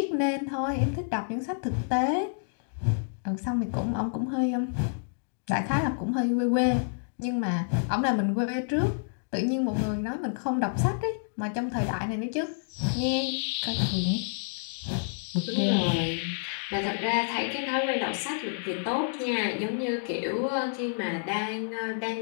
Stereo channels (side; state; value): right; silent; digital silence